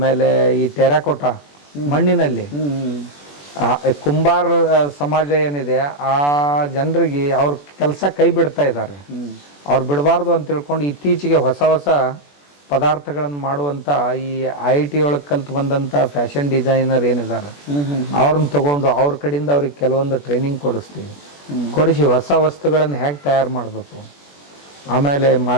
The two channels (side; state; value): right; late; 21 ms